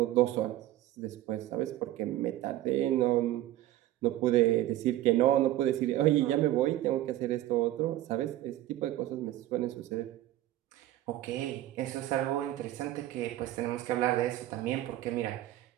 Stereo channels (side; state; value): left; quieter; 14.5 dB